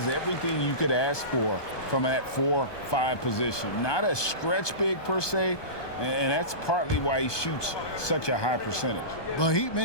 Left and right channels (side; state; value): right; late; 1.2 ms